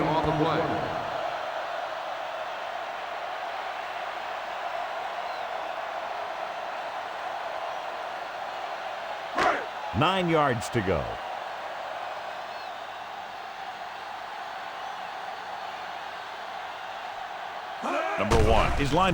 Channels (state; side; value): identical; both; correlation 1.00